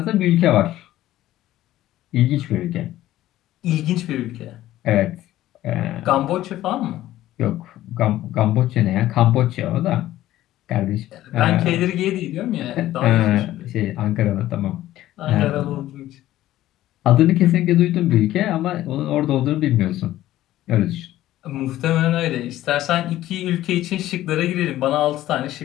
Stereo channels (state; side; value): quieter; right; 14.4 dB